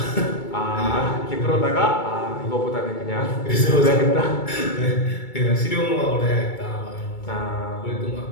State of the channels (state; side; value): late; right; 2.3 ms